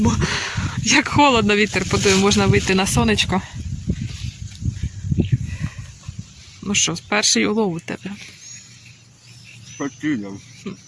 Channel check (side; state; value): both; identical; correlation 1.00